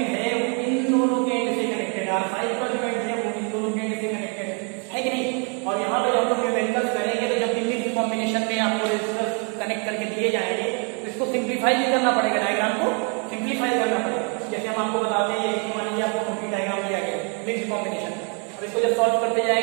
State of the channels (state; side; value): quieter; left; 37.6 dB